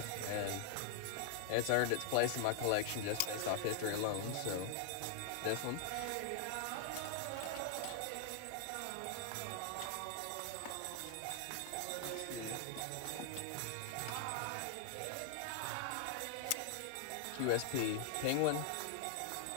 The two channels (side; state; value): both; different; correlation 0.00